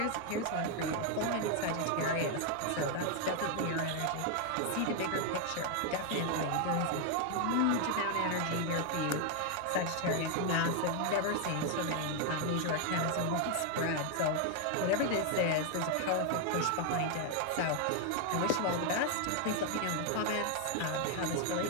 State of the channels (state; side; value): different; both; correlation 0.00